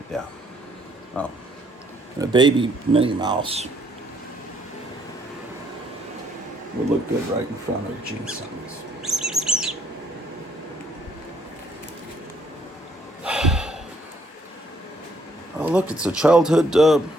Yeah. Oh. And a baby Minnie Mouse would look good right in front of Gene Simmons. Oh, look, it's a childhood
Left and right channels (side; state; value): both; normal; correlation 0.68